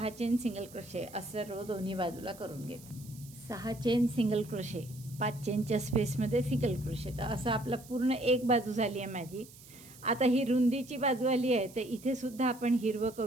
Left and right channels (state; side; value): noise; right; hiss, 20 dB below the sound